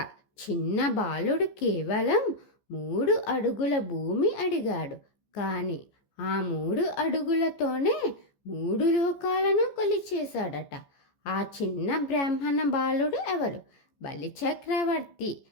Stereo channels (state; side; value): late; right; 14 ms